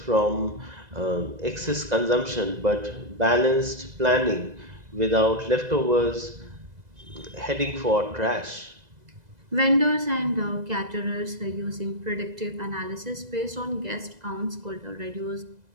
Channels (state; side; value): late; left; 2.0 ms